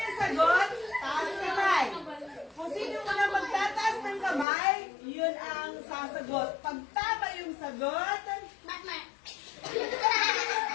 yung sagot, taas kamay. Kung sino muna magtataas ng kamay, yun ang sasagot. Pag tama yung sagot,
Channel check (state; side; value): drops out; right; at 4.5 s